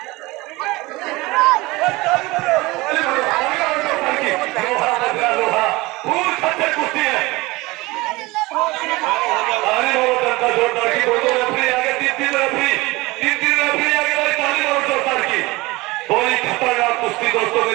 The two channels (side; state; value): left; quieter; 21.8 dB